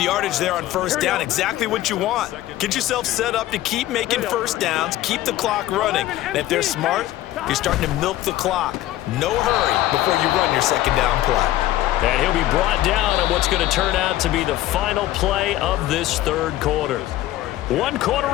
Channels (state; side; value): quieter; right; 14.9 dB